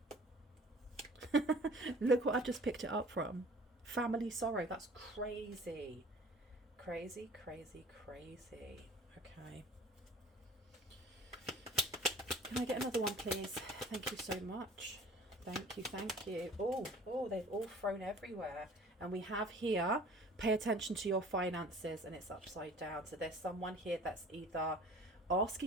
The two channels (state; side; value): normal; both; correlation 0.48